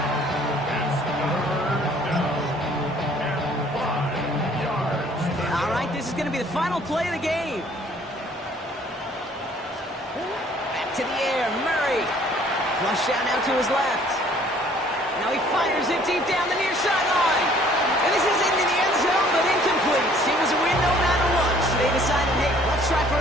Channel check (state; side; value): normal; both; correlation 0.57